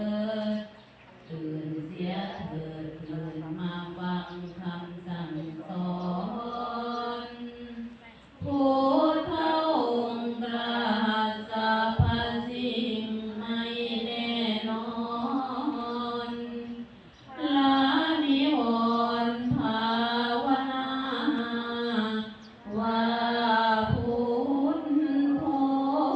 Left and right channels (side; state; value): both; identical; correlation 1.00